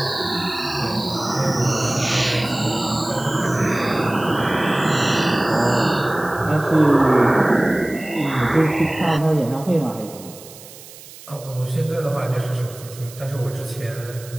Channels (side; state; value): right; noise; hiss, 18 dB below the sound